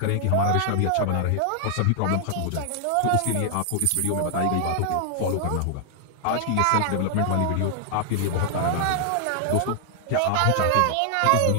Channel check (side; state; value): both; different; correlation 0.00